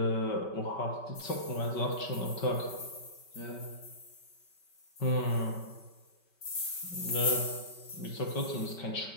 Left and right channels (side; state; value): right; late; 5.2 ms